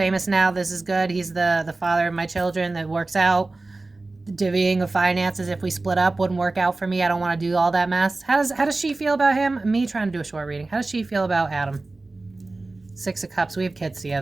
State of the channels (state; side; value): quieter; left; 3.3 dB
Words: now. This is good. He's the father of my children. That works out. The divvying of finances, if we split up, wouldn't work out for me. I don't want to do all that mess. How does she feel about him? Me trying to do a short reading. How does she feel about Adam? Six of Cups. We have kids